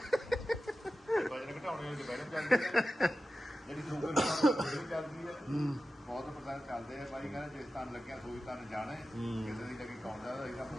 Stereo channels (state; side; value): normal; both; correlation 0.94